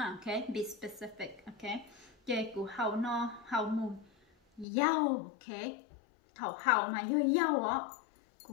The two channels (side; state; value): right; drops out; at 4.7 s